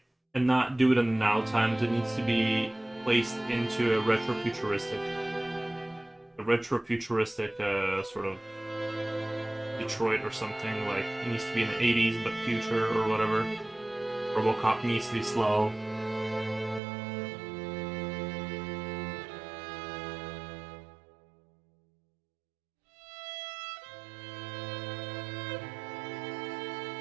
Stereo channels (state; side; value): drops out; left; at 16.8 s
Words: and not do it in the now times. It needs to be placed into a retrofuturistic sort of Detroit or something. Like, it needs to be in the 80s, but future or whatever. RoboCop needs to be slow.